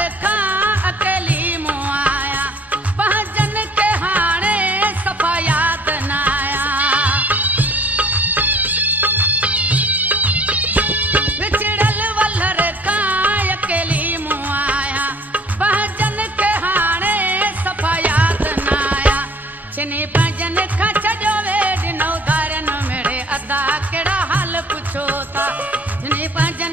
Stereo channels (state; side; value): normal; both; correlation 0.53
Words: चिनी पंजन खच जो वेड नौ धारन मेरे अदा केड़ा हाल पुछो था चिनी